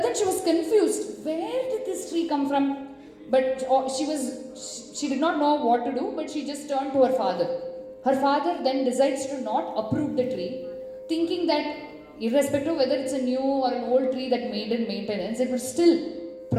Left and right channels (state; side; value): identical; both; correlation 1.00